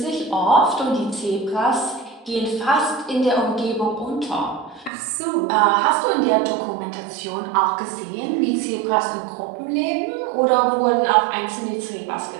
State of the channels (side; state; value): left; drops out; at 4.9 s